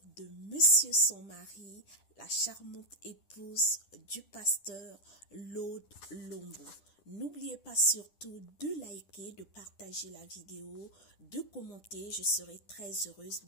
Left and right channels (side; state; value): right; late; 10 ms